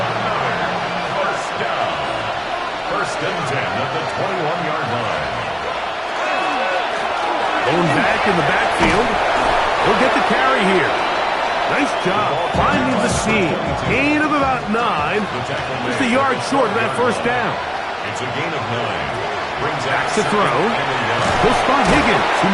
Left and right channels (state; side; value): identical; both; correlation 1.00